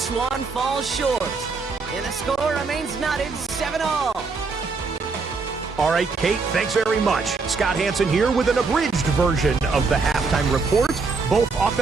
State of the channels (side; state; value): left; quieter; 4.4 dB